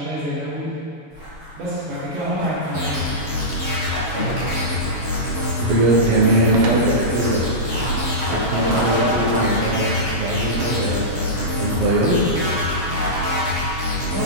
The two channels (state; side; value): late; left; 7.2 ms